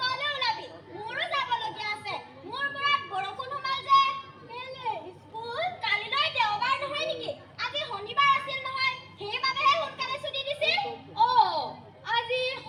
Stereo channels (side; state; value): both; identical; correlation 1.00